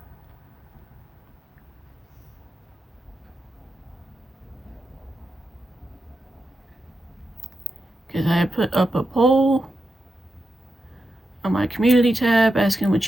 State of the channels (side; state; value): both; normal; correlation 0.88